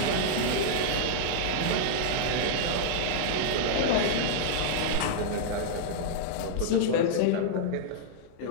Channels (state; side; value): different; both; correlation -0.02